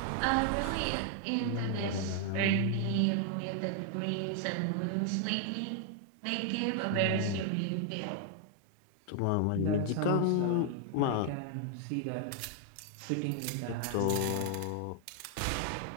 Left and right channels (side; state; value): both; different; correlation 0.00